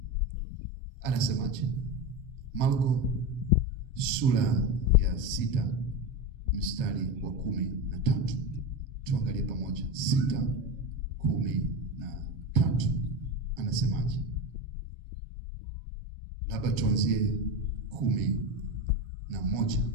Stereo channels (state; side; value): late; left; 7.2 ms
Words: Anasemaje? Marko sura ya 6 mstari wa 13. Tuangalie pamoja. 6:13. Anasemaje? Labda tuanzie 11,